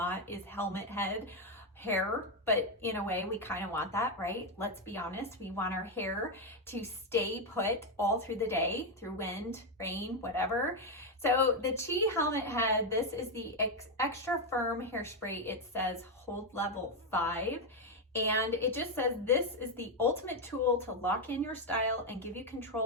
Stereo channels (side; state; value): both; normal; correlation 0.05